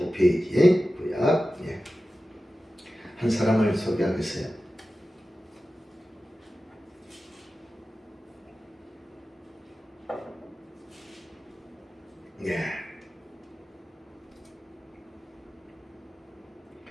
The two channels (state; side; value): normal; both; correlation 0.94